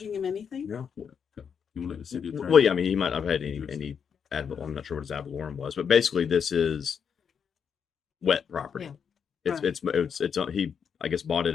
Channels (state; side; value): quieter; right; 7.0 dB